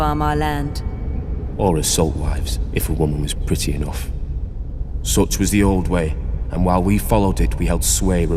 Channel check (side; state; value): both; identical; correlation 1.00